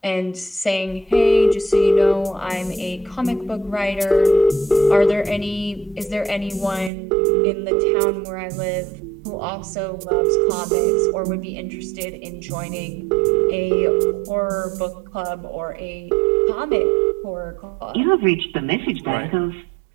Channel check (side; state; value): left; drops out; at 6.9 s